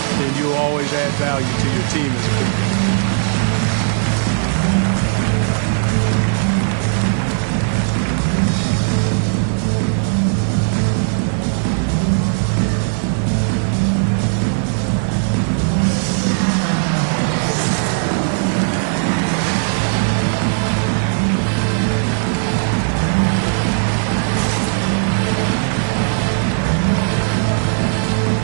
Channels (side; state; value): left; silent; digital silence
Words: then you'll always add value to your team as a big man.